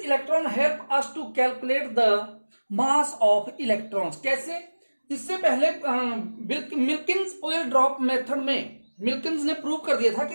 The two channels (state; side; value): inverted; both; correlation -1.00